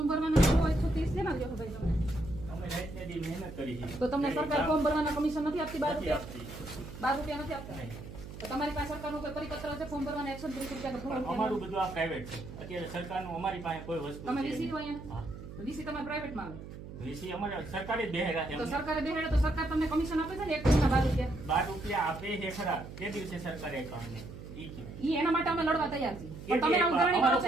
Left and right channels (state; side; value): noise; right; hum, 12 dB below the sound